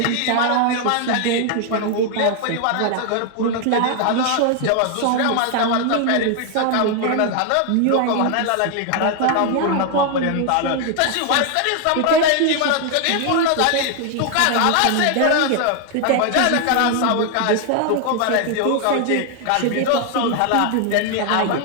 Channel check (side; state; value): both; different; correlation 0.00